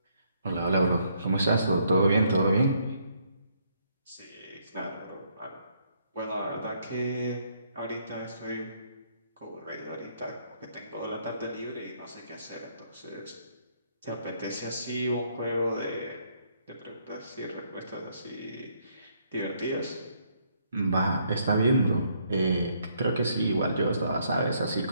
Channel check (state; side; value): inverted; both; correlation -0.70